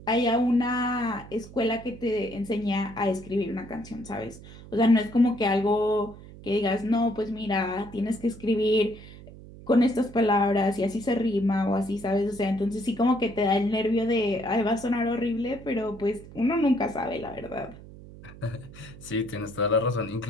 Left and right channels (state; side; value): noise; right; hum, 17 dB below the sound